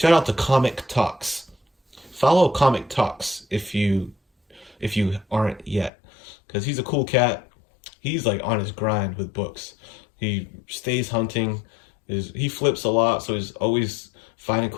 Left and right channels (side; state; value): right; drops out; at 5.9 s